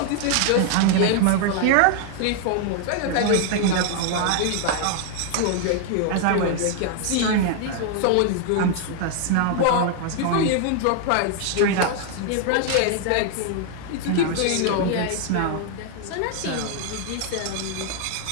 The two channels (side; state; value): both; different; correlation 0.00